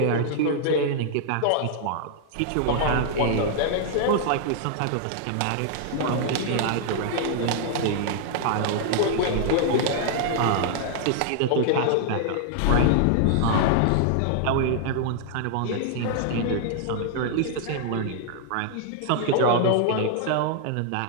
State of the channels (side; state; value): both; different; correlation -0.01